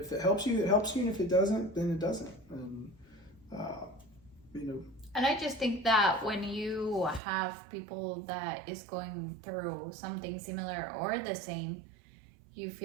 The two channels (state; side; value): drops out; left; at 7.2 s